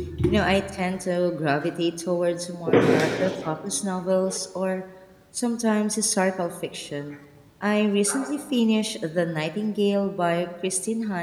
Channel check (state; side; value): identical; both; correlation 1.00